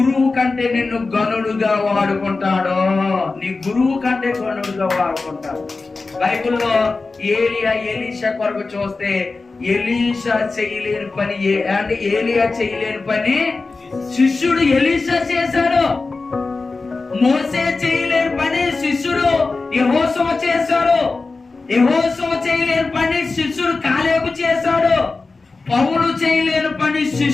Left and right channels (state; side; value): quieter; right; 3.8 dB